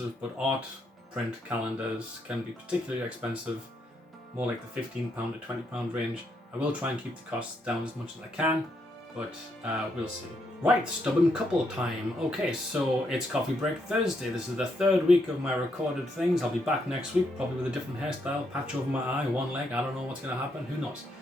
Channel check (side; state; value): both; normal; correlation 0.77